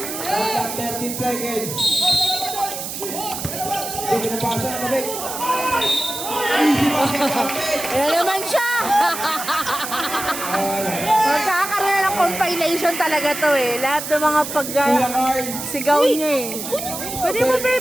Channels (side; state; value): right; noise; hiss, 7 dB below the sound